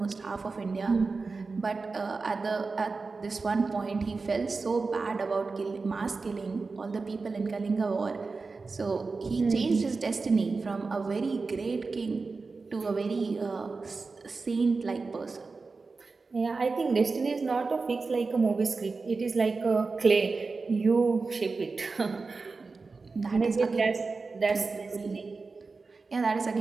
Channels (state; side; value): quieter; left; 4.2 dB